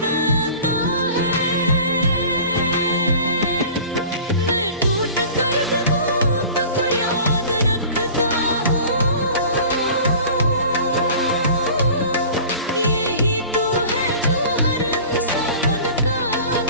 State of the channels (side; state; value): both; inverted; correlation -0.42